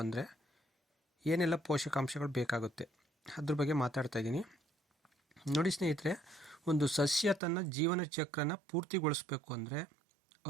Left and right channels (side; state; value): left; drops out; at 7.4 s